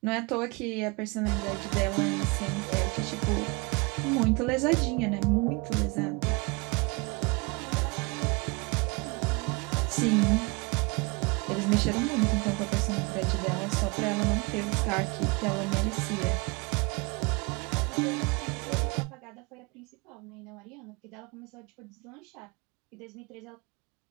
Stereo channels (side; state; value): left; quieter; 28.0 dB